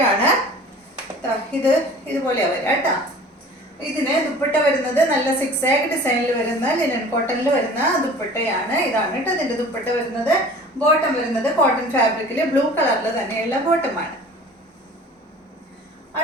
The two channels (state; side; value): normal; both; correlation 0.45